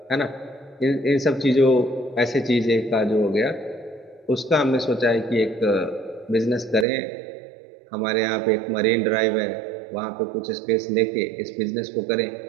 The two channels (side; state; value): left; drops out; at 6.9 s